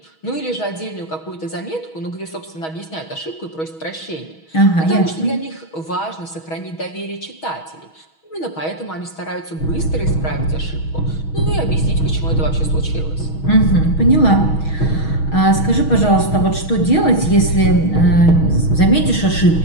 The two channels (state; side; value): late; right; 6.3 ms